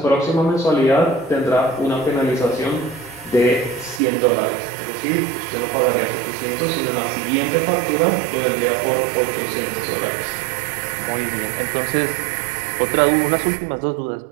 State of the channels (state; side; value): drops out; left; at 4.0 s